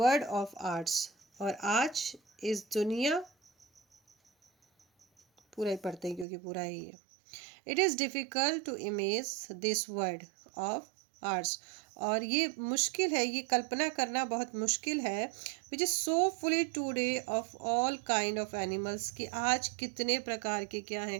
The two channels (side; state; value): left; drops out; at 6.2 s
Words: of ours। और आज इस दुनिया, पूरा ही पढ़ते हैं क्योंकि पूरा ही है। It is difficult to imagine this world of ours। और ये मुश्किल है, ये कल्पना करना बहुत मुश्किल है। Which is so fully today of all kind of animals, कि आज कितने प्रकार के क्या हैं,